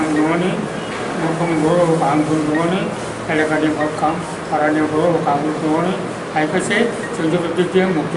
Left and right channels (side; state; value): both; identical; correlation 1.00